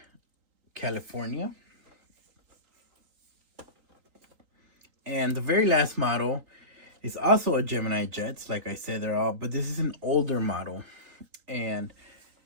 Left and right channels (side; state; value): left; late; 3.9 ms